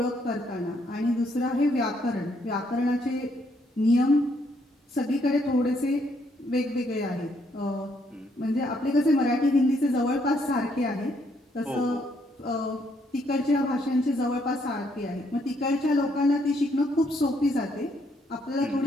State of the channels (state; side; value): normal; both; correlation 0.72